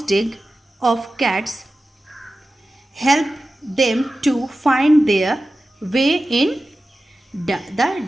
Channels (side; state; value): both; normal; correlation 0.94